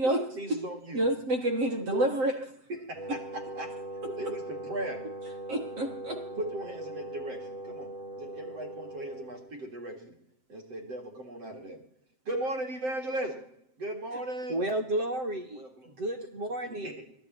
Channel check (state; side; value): late; left; 7.7 ms